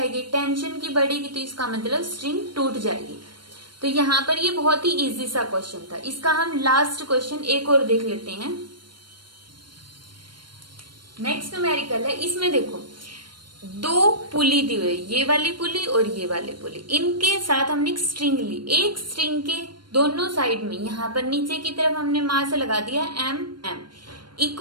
टेंशन की बढ़ेगी तो इसका मतलब स्ट्रिंग टूट जाएगी। तो यहाँ पर ये बहुत ही इजी सा क्वेश्चन था। इसका हम लास्ट क्वेश्चन एक और देख लेते हैं। नेक्स्ट न्यूमेरिकल है, इसमें देखो दो पुली दी हुई, ये वाली पुली और ये वाली पुली, इनके साथ हमने एक स्ट्रिंग ली। एक स्ट्रिंग के दोनों साइड में यहाँ पर नीचे की तरफ हमने मास लगा दिया m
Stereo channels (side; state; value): left; late; 0.72 ms